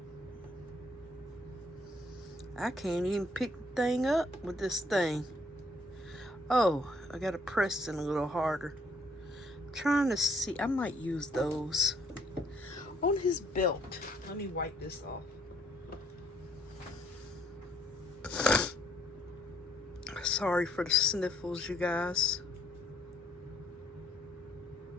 I can't even pick the thing up with this thing. Oh, I gotta press it a little harder. I'm trying to see. I might use those. On his belt. Let me wipe this off. Sorry for the sniffles, you guys.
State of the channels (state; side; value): normal; both; correlation 0.66